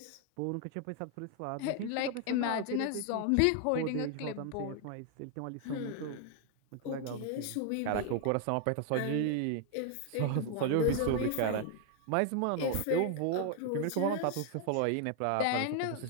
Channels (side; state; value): both; different; correlation 0.00